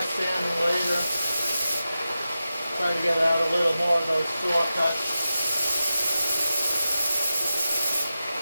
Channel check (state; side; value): inverted; both; correlation -0.92